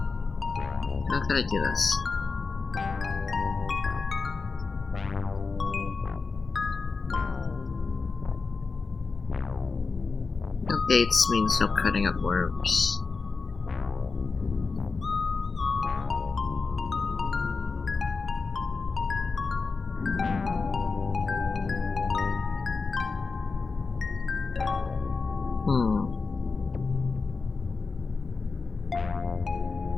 gotta do this. No gates means no cutting up worms.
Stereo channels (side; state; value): right; quieter; 4.4 dB